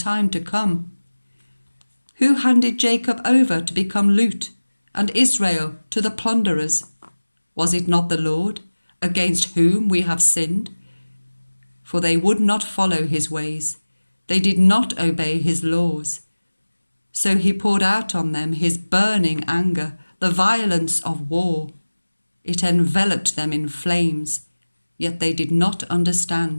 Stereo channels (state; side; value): inverted; both; correlation -1.00